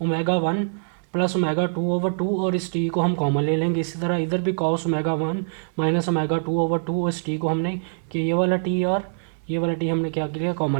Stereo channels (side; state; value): left; silent; digital silence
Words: omega 1 plus omega 2 over 2, और इस t को हम कॉमन ले लेंगे। इसी तरह इधर भी cos omega 1 minus omega 2 over 2, और इस t को हमने कि ये वाला t और ये वाला t हमने क्या किया,